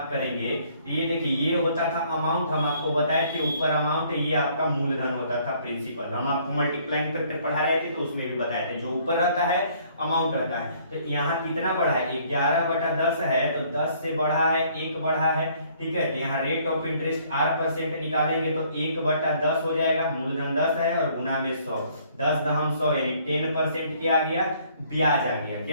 करेंगे तो ये देखिए, ये होता था अमाउंट, हम आपको बताए थे ऊपर अमाउंट है, ये आपका मूलधन होता था प्रिंसिपल। हम आपको मल्टीप्लाइंग फैक्टर पढ़ा रहे थे तो उसमें भी बताए थे, जो ऊपर रहता है अमाउंट रहता है। तो यहाँ कितना बढ़ा है, 11/10 है, तो 10 से बढ़ा है 1 बढ़ा है, ठीक है। तो यहाँ रेट ऑफ इंटरेस्ट R% निकालेंगे तो 1/10 हो जाएगा, मूलधन 10 है और गुना में 100, 10 दहम 100 यानी 10% क्या आ गया, ब्याज आ गया।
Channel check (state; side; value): inverted; both; correlation -0.62